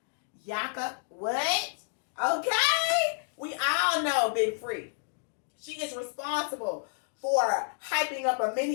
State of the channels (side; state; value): right; silent; digital silence